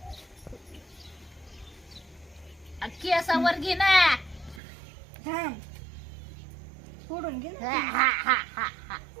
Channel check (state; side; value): drops out; left; at 4.6 s